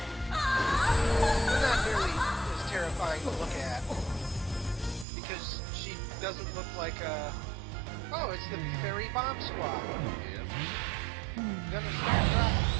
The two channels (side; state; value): left; drops out; at 5.1 s